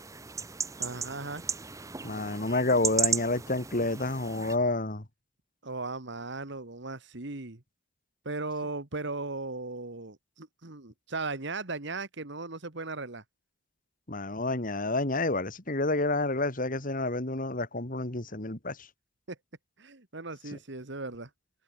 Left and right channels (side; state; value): both; normal; correlation 0.05